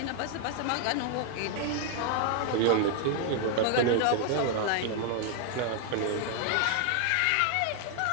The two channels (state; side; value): different; both; correlation 0.00